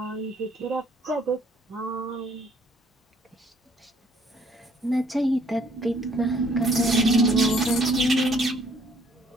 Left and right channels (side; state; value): both; normal; correlation 0.62